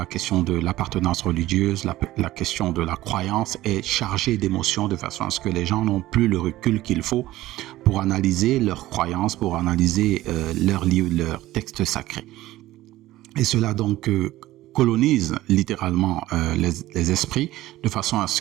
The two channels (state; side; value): quieter; left; 16.0 dB